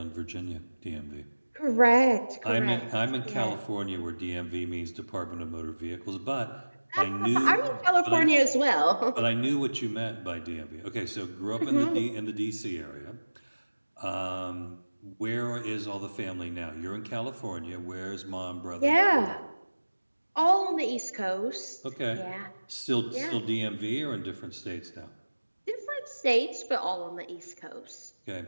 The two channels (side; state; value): both; inverted; correlation -1.00